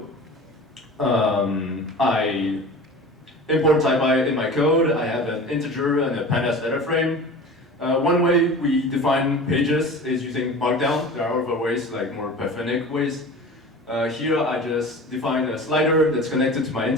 I import Taipy in my code. I have an integer and a pandas data frame. One way we define pages is using Markdown. There are other ways, like more Pythonic ways. Here I just define a slider that's connected to my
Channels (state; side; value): normal; both; correlation 0.37